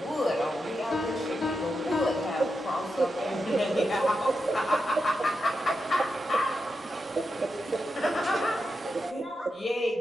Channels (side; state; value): both; normal; correlation 0.87